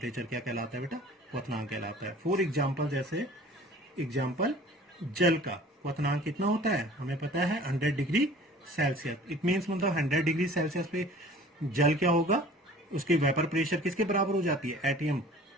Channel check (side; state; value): both; normal; correlation 0.47